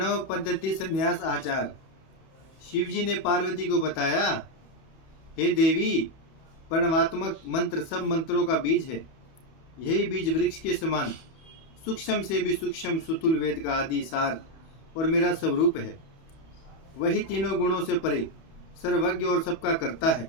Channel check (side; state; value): right; late; 31 ms